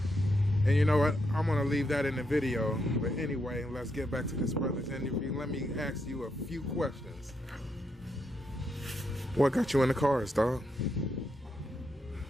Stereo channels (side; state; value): both; normal; correlation 0.80